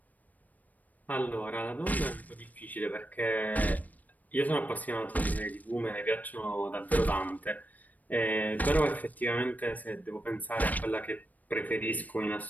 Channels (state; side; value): late; right; 0.079 ms